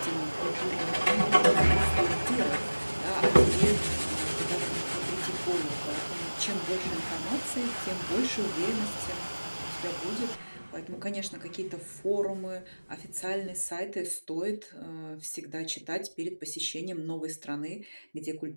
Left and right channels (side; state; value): both; inverted; correlation -1.00